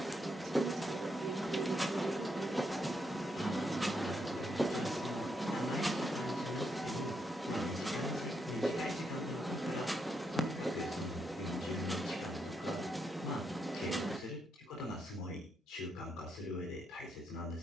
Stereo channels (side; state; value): both; normal; correlation 0.80